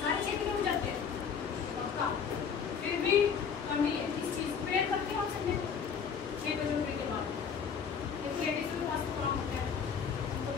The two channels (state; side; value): quieter; right; 6.7 dB